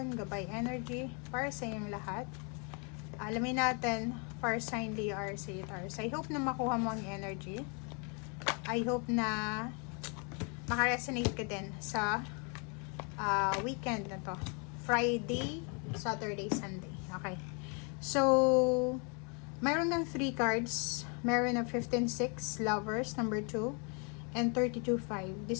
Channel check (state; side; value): quieter; right; 36.2 dB